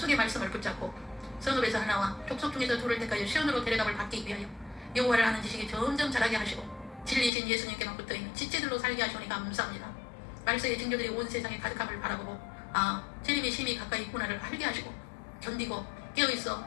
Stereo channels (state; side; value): drops out; right; at 7.3 s